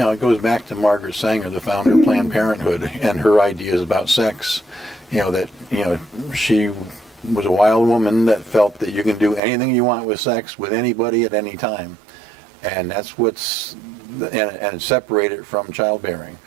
it goes back to Margaret Sanger, the founder of Planned Parenthood, and her ideas about sex. That she was a wild woman that felt that you can do anything you want with sex with anybody at any time. And that's and separate it from childbearing.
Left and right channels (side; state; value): left; drops out; at 9.4 s